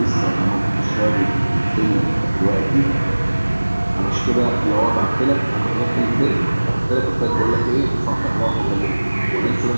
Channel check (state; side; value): inverted; both; correlation -1.00